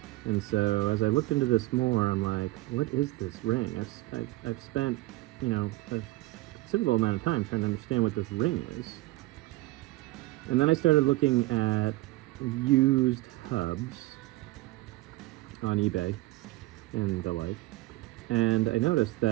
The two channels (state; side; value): quieter; left; 18.8 dB